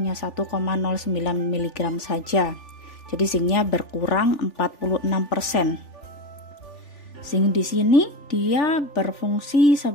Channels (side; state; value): right; late; 3.4 ms